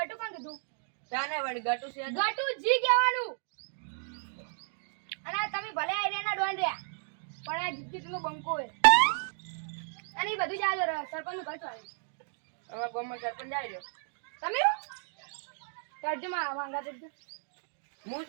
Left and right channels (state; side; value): silent; left; digital silence